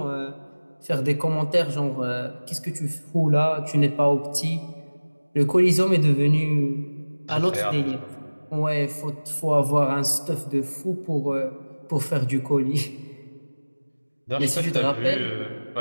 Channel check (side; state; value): both; inverted; correlation -1.00